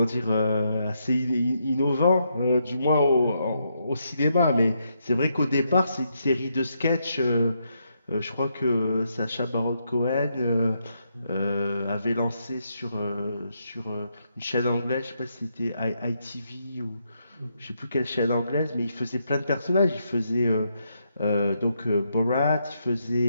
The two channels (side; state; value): both; inverted; correlation -0.79